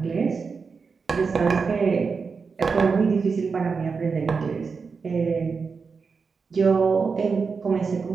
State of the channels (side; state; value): left; quieter; 5.1 dB